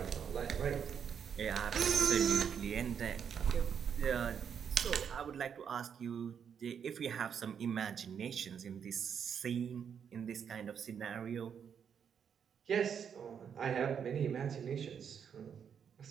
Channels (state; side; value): quieter; left; 7.6 dB